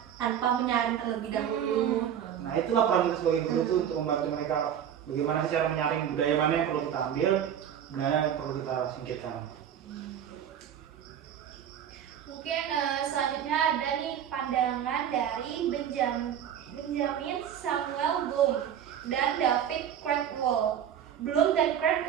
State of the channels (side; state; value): left; quieter; 9.4 dB